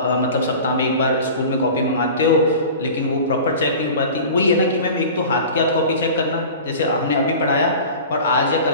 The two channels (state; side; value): inverted; both; correlation -0.37